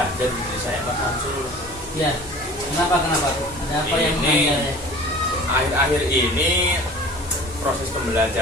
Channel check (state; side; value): normal; both; correlation 0.43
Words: di saya Pak Samsul. Iya. Kenapa tuh? Ada apa yang ganjel ya? Akhir-akhir ini proses